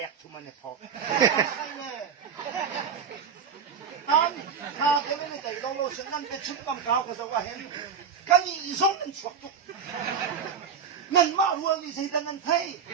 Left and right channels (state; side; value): quieter; left; 6.7 dB